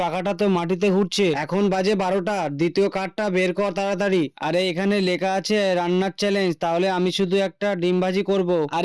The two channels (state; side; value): identical; both; correlation 1.00